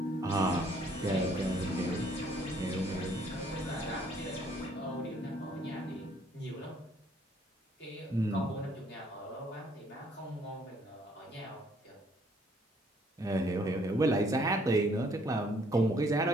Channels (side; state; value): both; normal; correlation 0.64